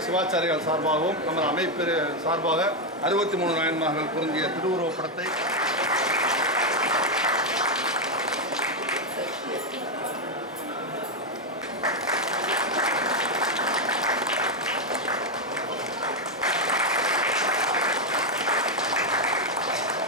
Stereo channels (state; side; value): normal; both; correlation 0.04